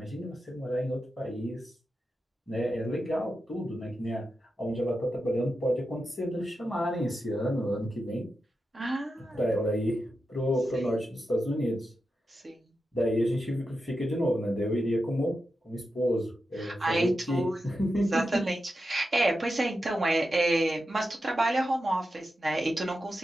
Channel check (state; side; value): normal; both; correlation 0.89